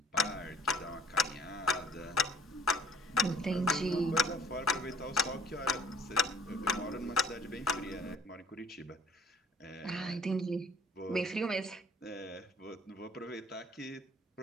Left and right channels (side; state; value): both; normal; correlation 0.58